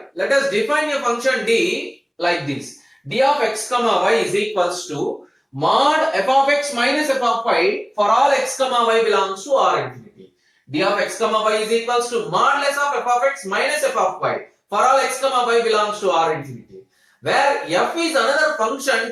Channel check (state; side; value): identical; both; correlation 1.00